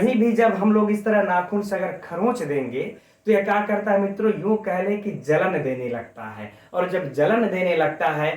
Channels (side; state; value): both; identical; correlation 1.00